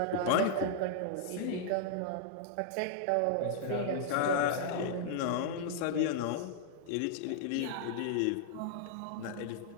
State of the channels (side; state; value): both; different; correlation -0.01